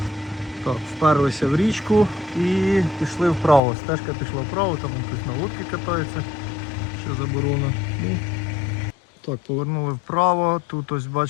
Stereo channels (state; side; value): drops out; right; at 3.6 s